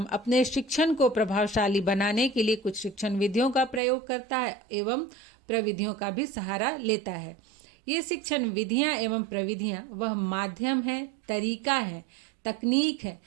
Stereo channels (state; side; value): drops out; left; at 3.8 s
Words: अपने शिक्षण को प्रभावशाली बनाने के लिए कुछ शिक्षण विधियों का प्रयोग करता है एवं प्रविधियों का भी सहारा लेता है। ये शिक्षण विधियां एवं प्रविधियां वह माध्यम है, तरीका है, तकनीक है